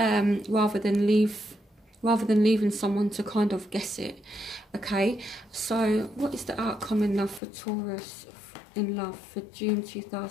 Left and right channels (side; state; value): right; drops out; at 7.4 s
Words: rather than leaving someone to kind of guess it. Okay, so what is the outcome in love for Taurus in love for June